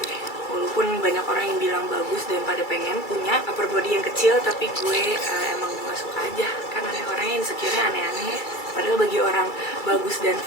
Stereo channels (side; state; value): right; late; 2.3 ms